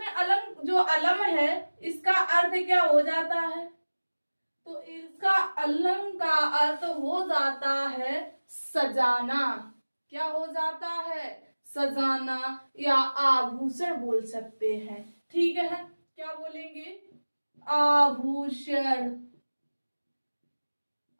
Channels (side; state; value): both; inverted; correlation -1.00